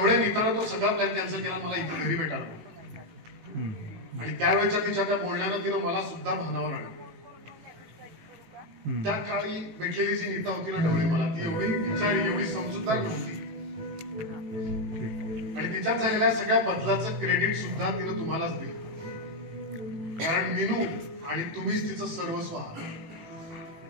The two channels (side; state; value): left; late; 18 ms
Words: नीतानं तो सगळा प्लॅन कॅन्सल केला, मला इथे घरी भेटायला बोलवलं. आणि त्यावेळेच्या तिच्या त्या बोलण्यानं तिनं मला सुद्धा भानावर आणलं. त्या काळी भेटलेली जी नीता होती ना ढवळे, मला ती एवढी विचारी, एवढी समजूतदार नव्हती. आणि तिच्यात झालेल्या सगळ्या बदलाचं क्रेडिट सुद्धा तिनं तुम्हालाच दिलं. कारण मीनू आणि तुम्हीच तिचं सर्वस्व आहात.